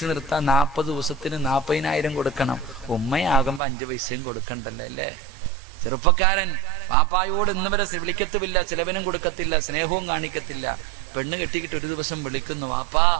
നിർത്താൻ 40 ദിവസത്തിന് 40,000 കൊടുക്കണം. ഉമ്മയാകുമ്പോ 5 പൈസയും കൊടുക്കണ്ടല്ലേ അല്ലേ? ചെറുപ്പക്കാരൻ പാപ്പായോട് ഇന്ന് വരെ വിളിക്കത്തുമില്ല, ചിലവനും കൊടുക്കത്തില്ല, സ്നേഹവും കാണിക്കത്തില്ല. പെണ്ണ് കെട്ടിക്കിട്ട് ഒരു ദിവസം വിളിക്കുന്നു, വാപ്പാ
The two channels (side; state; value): left; drops out; at 3.6 s